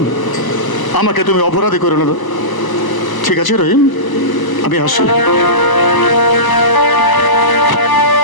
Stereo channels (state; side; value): late; right; 1.0 ms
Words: আমাকে তুমি অপরাধী করে নেবে। ঠিক আছে রহিম, আমি আসি।